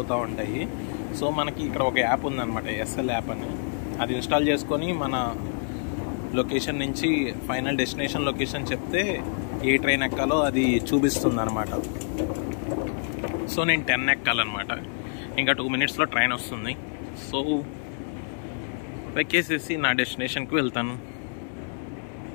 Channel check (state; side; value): silent; right; 60 dB below the other